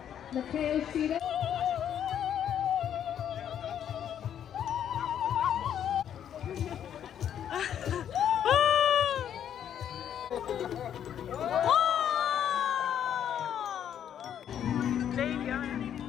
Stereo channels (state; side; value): quieter; right; 9.6 dB